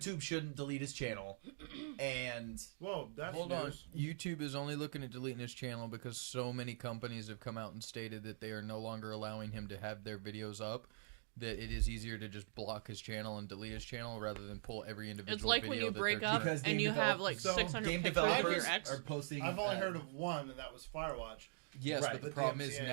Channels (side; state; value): left; silent; digital silence